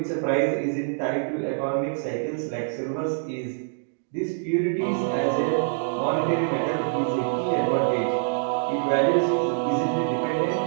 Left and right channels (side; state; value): left; silent; digital silence